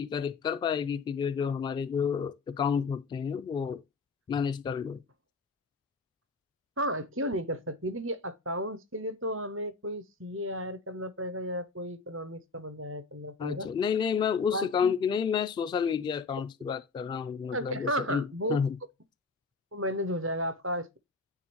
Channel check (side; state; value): right; quieter; 4.1 dB